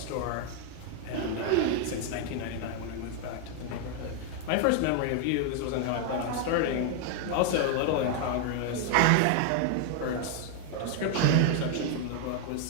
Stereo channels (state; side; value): different; both; correlation 0.00